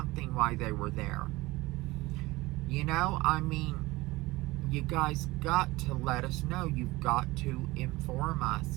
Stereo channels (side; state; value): left; quieter; 20.6 dB